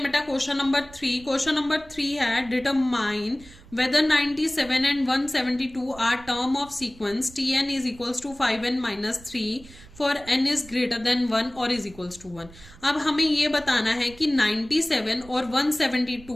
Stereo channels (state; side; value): noise; right; rumble, 21 dB below the sound